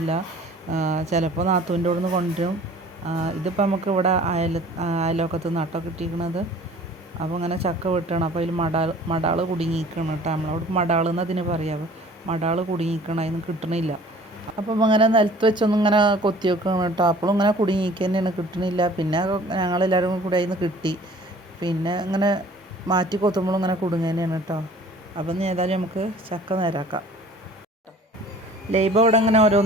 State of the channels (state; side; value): normal; both; correlation 0.49